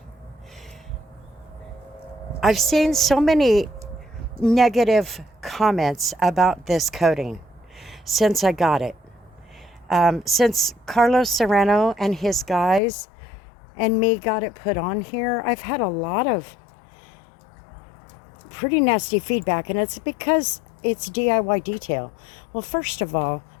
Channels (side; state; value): right; drops out; at 12.8 s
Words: I've seen so many negative comments about this coating since I got it. Since Carlos Serrano and his guys and me got it put on here, I've had a lot of pretty nasty feedback, and it's because it's DIY detail. Well, first of all,